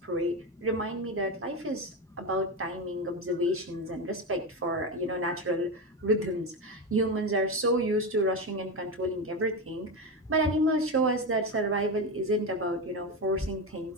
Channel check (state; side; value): normal; both; correlation 0.15